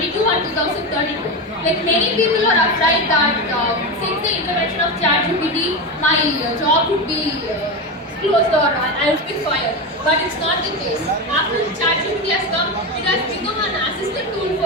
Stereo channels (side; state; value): both; normal; correlation 0.17